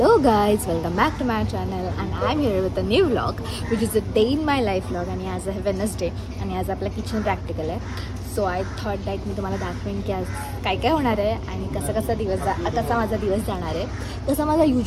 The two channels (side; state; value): both; identical; correlation 1.00